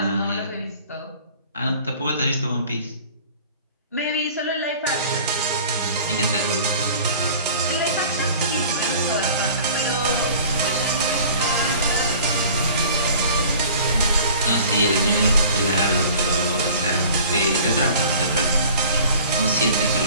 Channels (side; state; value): both; inverted; correlation -0.46